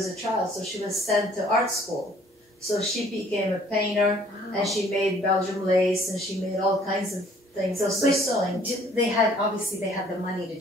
a child, so she was sent to art school. So she became a painter, and she made Belgium lace, and she made all kinds of things. Also sewing. Obviously they had the money to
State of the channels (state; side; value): normal; both; correlation 0.58